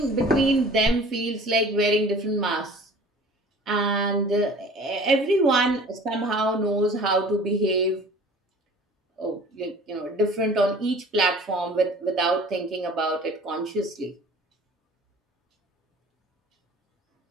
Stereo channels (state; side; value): normal; both; correlation 0.47